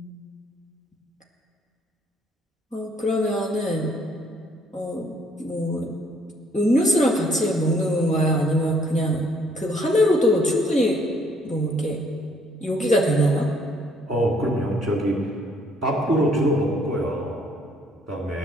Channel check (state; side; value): normal; both; correlation 0.65